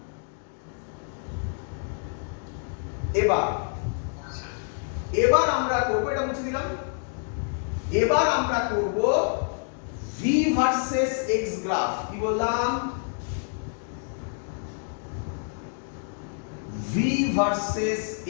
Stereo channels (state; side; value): silent; right; 60 dB below the other